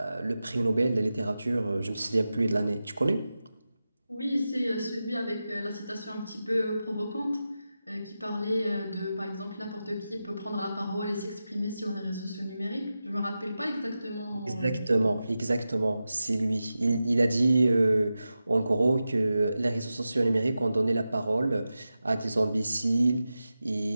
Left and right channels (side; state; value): both; inverted; correlation -0.92